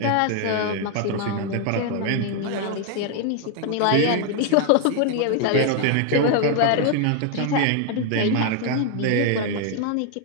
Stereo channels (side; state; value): both; different; correlation 0.00